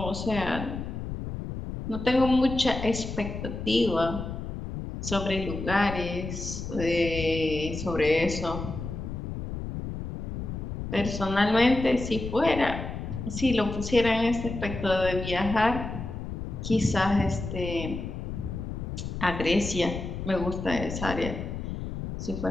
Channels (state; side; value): noise; left; rumble, 6 dB below the sound